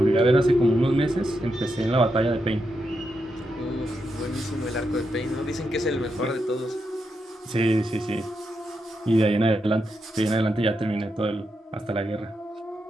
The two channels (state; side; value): normal; both; correlation 0.84